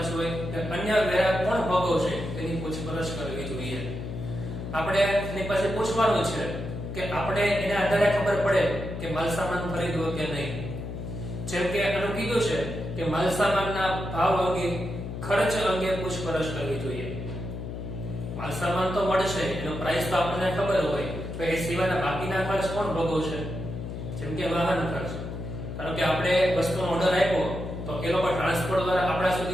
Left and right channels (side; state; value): left; noise; hum, 7 dB below the sound